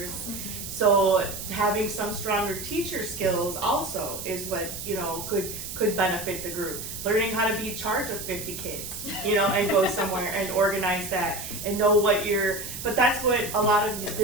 So having some stronger teacher skills also is what, you know, could benefit the group. Learning how to be in charge of 50 kids, you know, and go somewhere and organize that and know but that's what a lot of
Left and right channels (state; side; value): noise; right; hiss, 8 dB below the sound